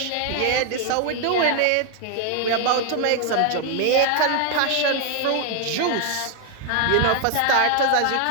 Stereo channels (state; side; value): different; both; correlation 0.00